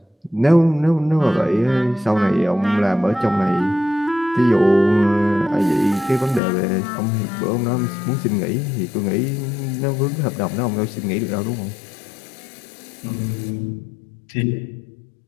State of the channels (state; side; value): drops out; right; at 6.4 s